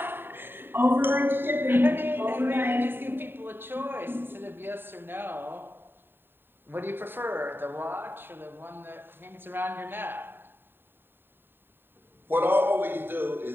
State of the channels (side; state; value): left; late; 0.10 ms